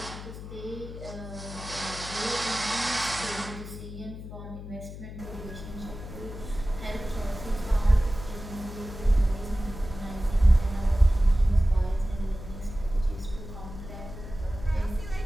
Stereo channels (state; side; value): noise; left; hum, 11 dB below the sound